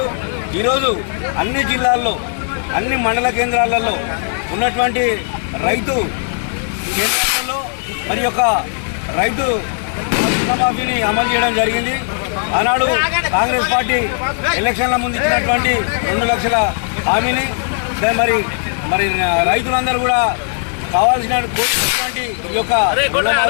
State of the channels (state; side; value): silent; right; digital silence